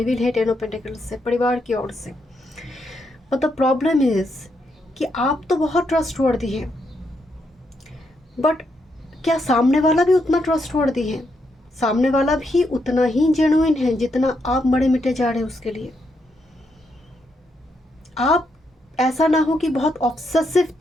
है 10 ऑफ पेंटिकल्स से, परिवार की ओर से। बट द प्रॉब्लम इज कि आप तो बहुत ट्रस्टवर्दी है, बट क्या सामने वाला भी उतना ट्रस्टवर्दी है? सामने वाला भी उतना ही जेन्युइन है जितना आप मरे मिटे जा रहे हैं उसके लिए। आप ऐसा ना हो कि बहुत ऑब्सेसिव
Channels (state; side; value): normal; both; correlation 0.79